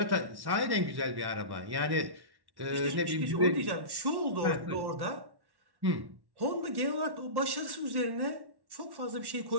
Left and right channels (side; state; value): left; late; 1.1 ms